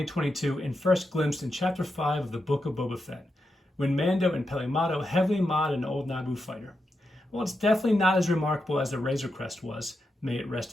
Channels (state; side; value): normal; both; correlation 0.86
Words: and first glimpsed in Chapter 5 of the Book of Boba Fett, when Mando and Peli Motto heavily mod an old Naboo fighter. While it's definitely not as remarkable as the Razor Crest was, may it